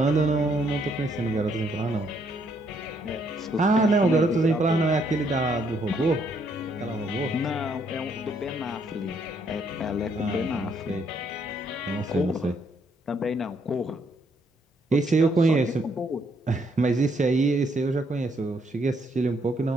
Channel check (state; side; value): normal; both; correlation 0.71